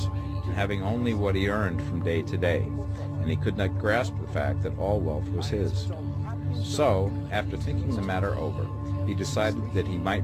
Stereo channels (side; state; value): both; identical; correlation 1.00